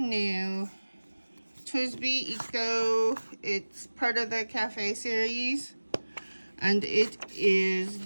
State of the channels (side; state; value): both; inverted; correlation -1.00